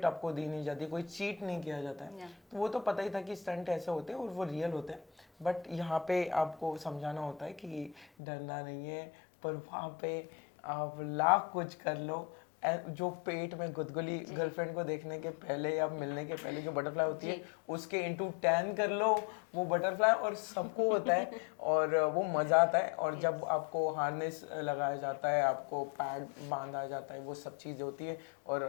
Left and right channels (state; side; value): drops out; right; at 8.1 s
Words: आपको दी नहीं जाती, कोई चीट नहीं किया जाता है। तो वो तो पता ही था कि स्टंट ऐसे होते हैं और वो रियल होते हैं। बट यहाँ पे आपको समझाना होता है कि डरना नहीं है। पर वहाँ पे आप लाख कुछ कर लो, जो पेट में गुदगुली गर्लफ्रेंड को देखने के पहले या मिलने के पहले जो बटरफ्लाई होती है उसके इंटू 10 कर लो, वो बटरफ्लाई और सबको होता है और वो मज़ा आता है। और जब आपको हार्नेस लगाया जाता है, आपको पैड बांधा जाता है, वो सब चीज़ें होती है।